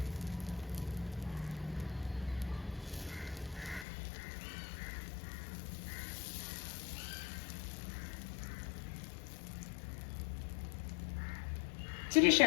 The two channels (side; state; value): right; drops out; at 3.9 s